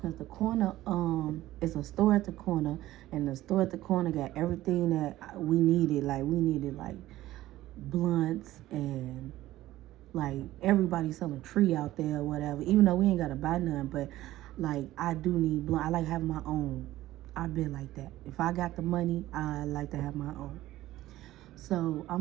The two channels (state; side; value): quieter; left; 15.5 dB